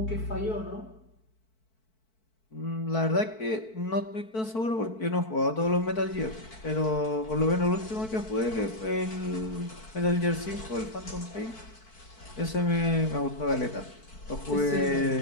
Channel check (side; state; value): right; late; 4.6 ms